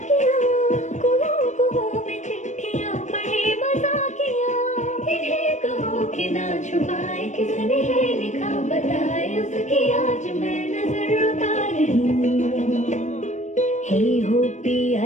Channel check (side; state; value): right; late; 0.34 ms